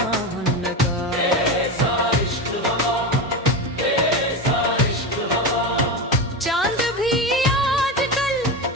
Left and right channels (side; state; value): both; normal; correlation 0.19